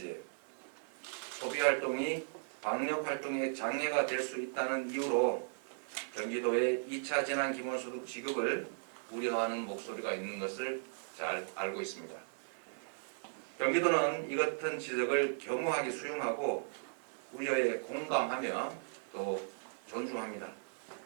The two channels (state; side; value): silent; left; digital silence